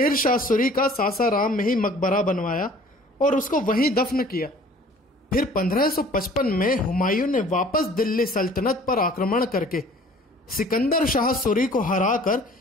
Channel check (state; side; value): normal; both; correlation 0.50